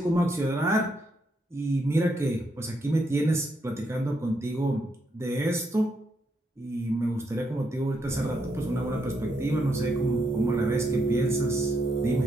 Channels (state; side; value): normal; both; correlation 0.78